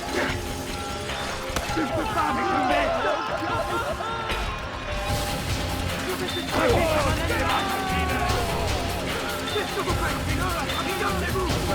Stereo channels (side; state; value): both; identical; correlation 1.00